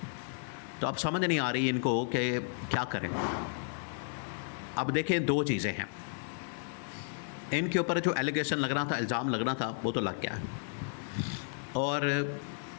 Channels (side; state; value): right; silent; digital silence